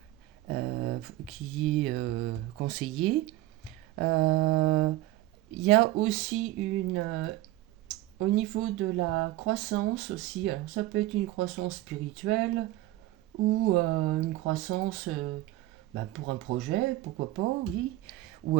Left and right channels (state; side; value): quieter; left; 16.7 dB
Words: qui est conseillé. Euh, Il y a aussi au niveau de la croissance aussi, alors ça peut être une croissance spirituelle ou une croissance pour un projet, pourquoi pas, oui. Ou